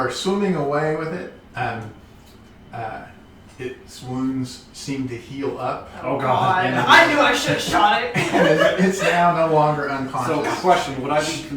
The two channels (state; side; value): identical; both; correlation 1.00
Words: swimming away with it, its wounds seem to heal up. Oh, God. And I knew I should have shot it. and it's now no longer So, unconscious. question: would I be